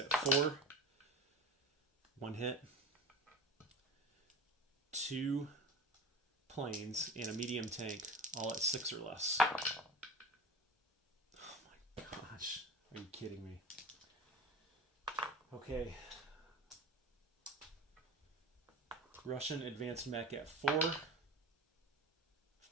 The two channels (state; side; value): normal; both; correlation 0.32